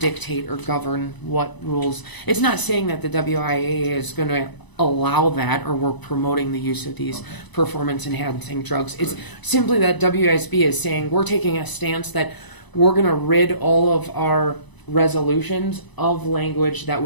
or govern what rules? It's not saying that the WIAA is going to allow that, or we're promoting the use of these performance enhancing drugs. It's simply that WASB is saying we're taking a stance that we're going to rid all of our resolutions of language that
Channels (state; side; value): late; right; 1.0 ms